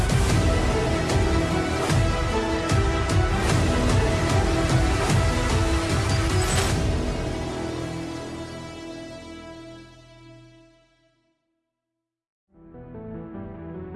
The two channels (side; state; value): both; identical; correlation 1.00